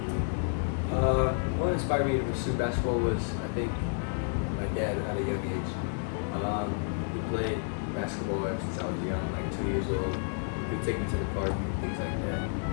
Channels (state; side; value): silent; right; 57 dB below the other